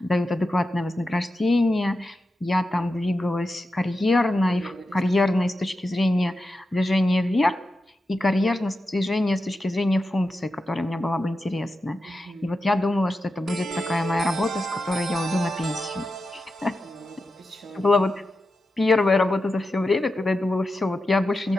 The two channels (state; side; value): normal; both; correlation 0.90